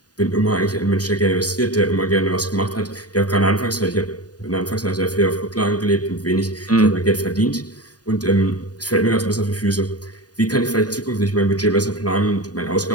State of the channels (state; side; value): late; right; 0.68 ms